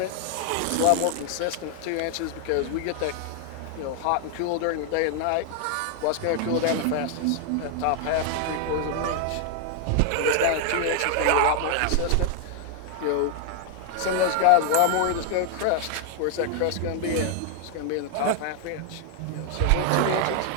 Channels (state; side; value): different; both; correlation 0.00